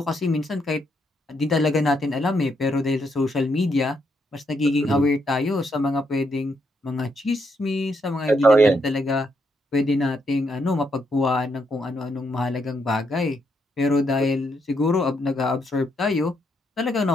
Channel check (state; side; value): normal; both; correlation 0.77